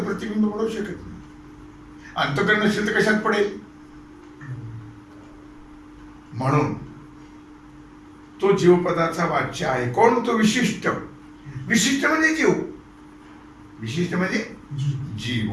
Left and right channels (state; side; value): identical; both; correlation 1.00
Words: प्रतिबिंब पडू शकत नाही. अंतःकरण नसेल तर कशात पडेल? म्हणून तो जीवपदाचा वाच्य आहे. कोण? तो विशिष्ट. विशिष्ट म्हणजे जीव. विशिष्ट म्हणजे जीव.